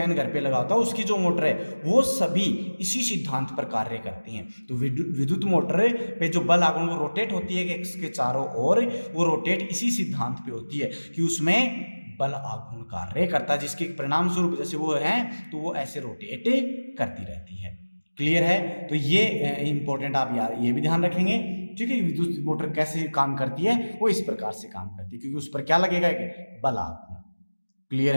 घर पे लगा होता है उसकी जो मोटर है, वो सभी इसी सिद्धांत पर कार्य करती हैं। तो विद्युत मोटर पे जो बल आघूर्ण वो रोटेट होती है कि इसके चारों ओर, वो रोटेट इसी सिद्धांत पे होती है कि उसमें बल आघूर्ण कार्य करता है, जिसके परिणाम स्वरूप जैसे वो है तो वो ऐसे रोटेट करती रहती है। क्लियर है? तो ये इंपॉर्टेंट, आप ये भी ध्यान रखेंगे, ठीक है। विद्युत मोटर कैसे काम करती है? वो इस प्रकार से काम करती है, क्योंकि उस पर क्या लगेगा? बल आघूर्ण। क्लियर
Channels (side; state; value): both; inverted; correlation -1.00